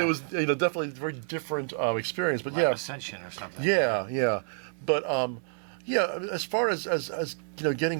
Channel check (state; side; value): silent; left; digital silence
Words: was definitely a very different experience. But like Ascension or something. Yeah. But as far as